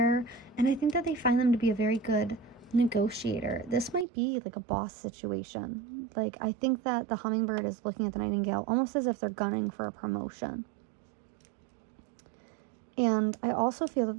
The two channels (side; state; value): left; drops out; at 4.0 s